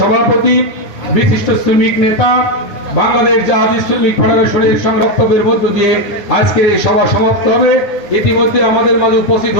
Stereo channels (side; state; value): right; late; 10 ms